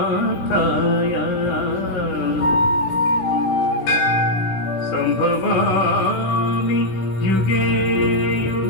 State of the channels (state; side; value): late; right; 16 ms